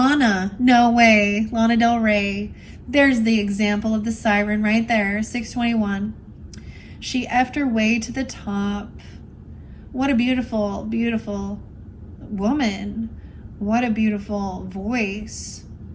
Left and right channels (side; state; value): both; identical; correlation 1.00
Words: no way. Lana Del Rey. There's the example of the Siren right there, 621. She effed her way to the top. What a beautiful, beautiful woman. What a beautiful voice.